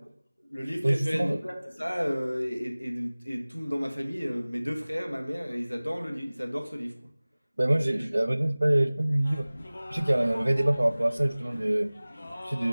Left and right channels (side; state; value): both; inverted; correlation -0.99